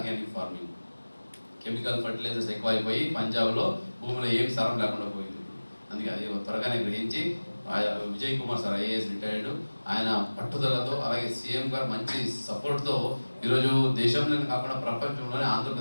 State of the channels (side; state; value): both; inverted; correlation -1.00